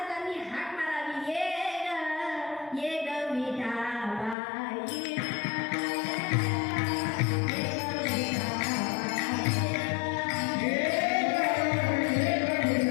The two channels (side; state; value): right; drops out; at 4.4 s